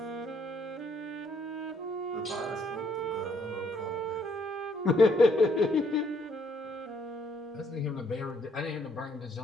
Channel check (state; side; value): normal; both; correlation 0.68